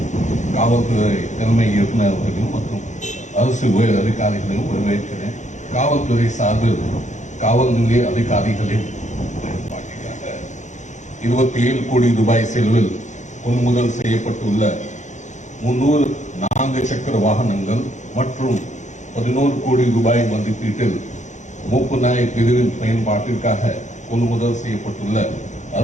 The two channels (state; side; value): late; right; 0.35 ms